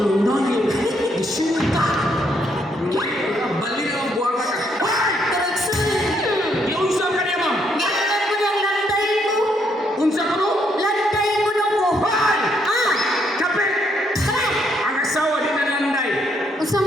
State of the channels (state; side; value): normal; both; correlation 0.73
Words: nayo. Isinta. Bali na ang buwang ka. Karagsun. Iunsa ka niya, ma'am. Ganun ko yung lantay ko. Unsa ko no? Lantay ko na ko. Hoy! Ah! Kapit! Sakay! Ang asawa din na landay. Usang